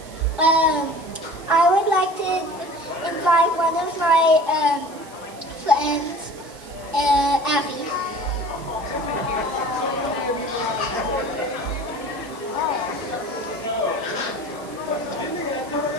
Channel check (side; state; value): right; noise; hiss, 21 dB below the sound